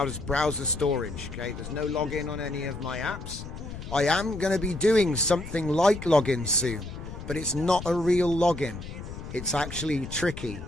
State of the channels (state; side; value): noise; left; rumble, 10 dB below the sound